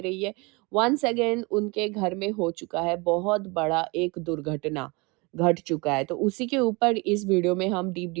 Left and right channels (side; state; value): left; quieter; 27.2 dB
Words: है। वन्स अगेन उनके घर में हो चुका है बहुत बड़ा एक दुर्घटना, घट चुका है। तो उसी के ऊपर इस वीडियो में हम डीप